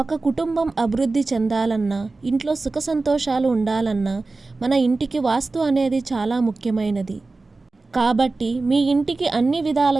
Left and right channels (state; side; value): quieter; left; 3.5 dB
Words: కుటుంబం అభివృద్ధి చెందాలన్నా, ఇంట్లో సుఖ సంతోషాలు ఉండాలన్నా మన ఇంటికి వాస్తు అనేది చాలా ముఖ్యమైనది. కాబట్టి మీ ఇంటికి అన్ని